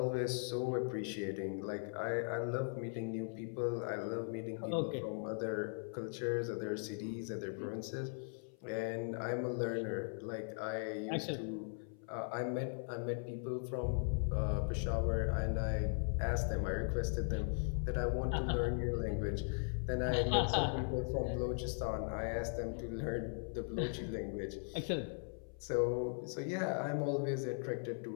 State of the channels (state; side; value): silent; right; 52 dB below the other